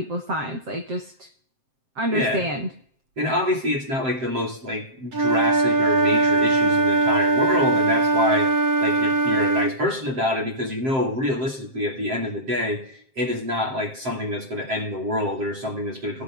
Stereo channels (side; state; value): left; late; 7.6 ms